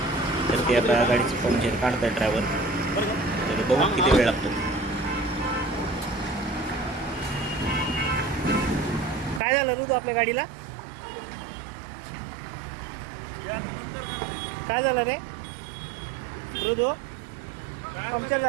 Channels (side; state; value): left; drops out; at 9.4 s